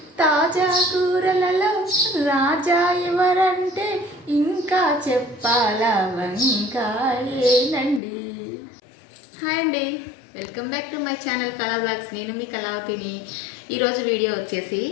తాజా కూరలలో రాజా ఎవరంటే ఇంకా చెప్పాలా వంకాయేనండి. హాయ్ అండి, welcome back to my channel కళా బ్లాగ్స్. నేను మీ కళావతిని. ఈరోజు వీడియో వచ్చేసి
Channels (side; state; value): right; drops out; at 8.0 s